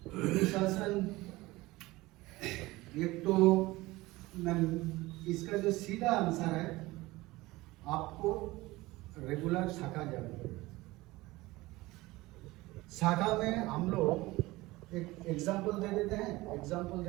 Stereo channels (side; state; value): left; quieter; 19.9 dB